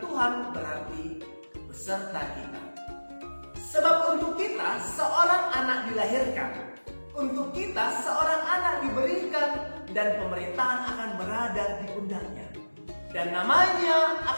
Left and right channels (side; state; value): both; inverted; correlation -1.00